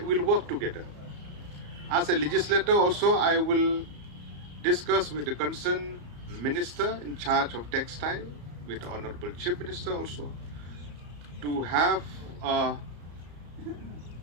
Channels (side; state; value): left; late; 34 ms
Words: we'll work together. As a legislator also, I will discuss with the concerned minister in charge of textile, with the Honorable Chief Minister also, to have a